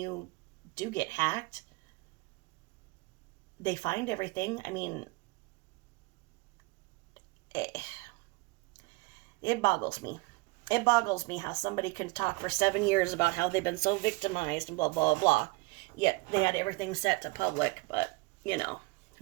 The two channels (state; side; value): quieter; left; 24.4 dB